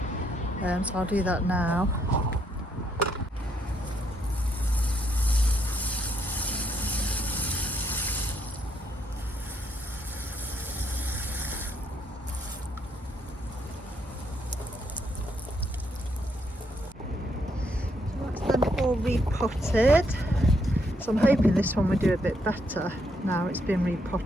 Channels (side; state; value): both; normal; correlation 0.75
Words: so I'll do that now. Repotted, so I'm hoping this one will do a bit better now it's been